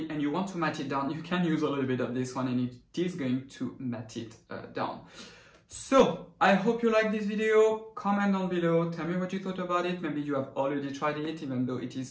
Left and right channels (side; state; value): both; identical; correlation 1.00